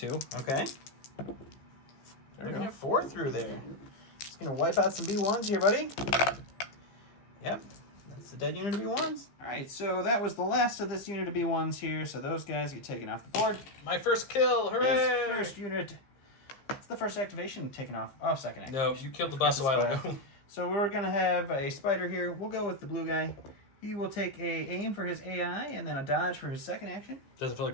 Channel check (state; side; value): late; right; 15 ms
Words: Okay. There We're we gonna go. have 4 through there. Just gonna wipe out some B1s here, buddy. Yep. That's the dead unit of B1s. Alright, so that was the last of this unit of B1s here, so those guys get taken off the board. My first kill, hooray! This first unit. It's the first activation taken off. Oh, second activation. No, you killed the boss a while ago. So we're gonna have a spider here. We'll go with the blue guy. He will take a aim for his AI and then a dodge for his second action. Doesn't feel